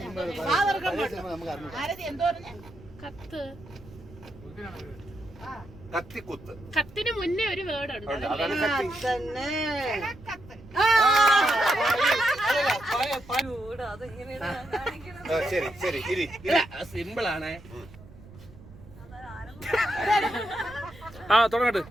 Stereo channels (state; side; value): noise; right; rumble, 20 dB below the sound